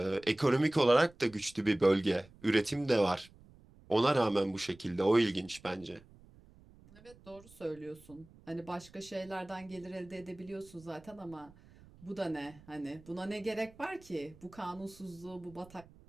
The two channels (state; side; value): noise; right; rumble, 24 dB below the sound